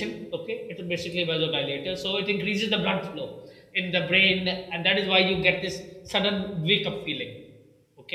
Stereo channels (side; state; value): both; identical; correlation 1.00